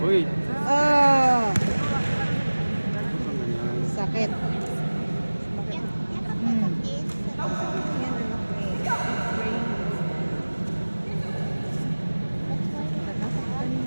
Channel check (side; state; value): both; inverted; correlation -1.00